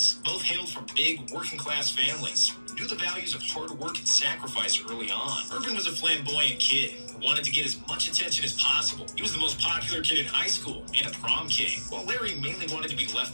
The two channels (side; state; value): both; inverted; correlation -1.00